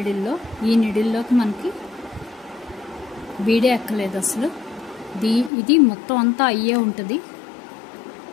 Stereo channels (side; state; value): right; drops out; at 5.5 s